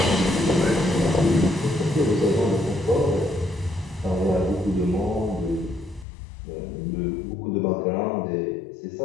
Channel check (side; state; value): right; drops out; at 6.1 s